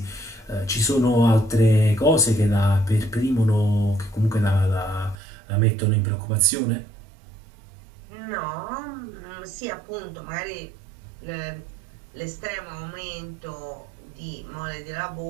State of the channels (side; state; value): left; drops out; at 5.2 s